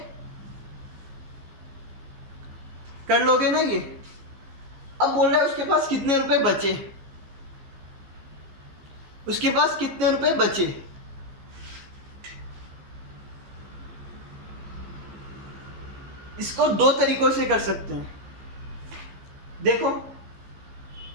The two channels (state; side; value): late; left; 15 ms